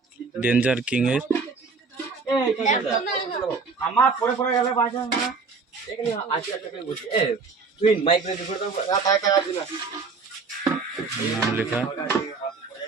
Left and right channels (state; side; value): quieter; left; 4.6 dB